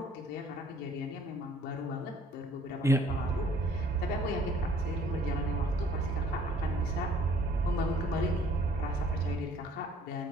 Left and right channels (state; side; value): normal; both; correlation 0.57